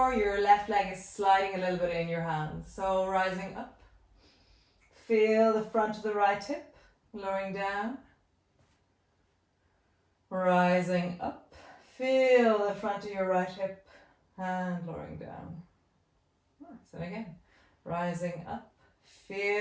your left leg is sliding a little bit in your hands. So rising up Feel the front of the right hip, lowering down. Rising up. Feel the front of your right hip and lowering down. Nice. And again, rising up.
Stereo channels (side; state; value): both; identical; correlation 1.00